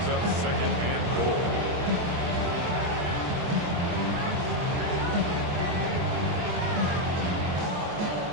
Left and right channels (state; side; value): late; left; 23 ms